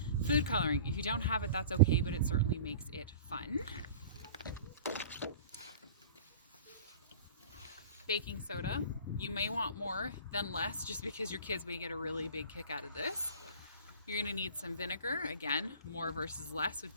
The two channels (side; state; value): both; inverted; correlation -0.40